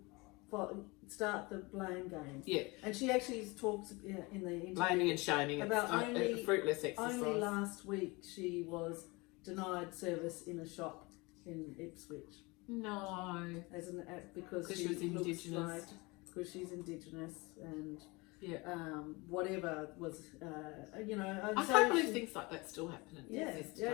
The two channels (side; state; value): right; quieter; 25.2 dB